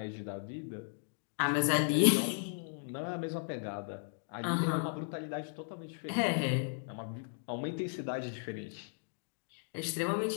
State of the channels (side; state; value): right; silent; digital silence